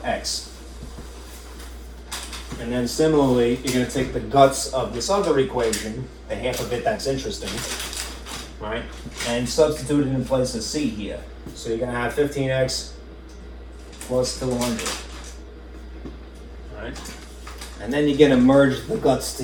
And then similarly, you're going to take the guts of this other equation, the half of it that's interesting, right, and substitute it in place of c here. So you're going to have 15x plus 200. Right? And then you're going to merge the guts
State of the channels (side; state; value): both; identical; correlation 1.00